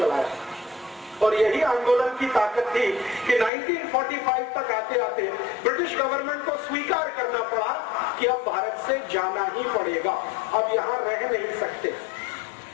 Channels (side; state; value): right; drops out; at 3.5 s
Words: और यही आंदोलन की ताकत थी कि 1945 तक आते आते ब्रिटिश गवर्नमेंट को स्वीकार करना पड़ा कि अब भारत से जाना ही पड़ेगा, अब यहाँ रह नहीं सकते।